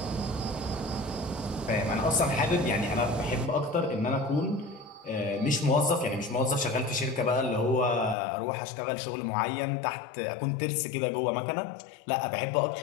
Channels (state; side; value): drops out; right; at 8.2 s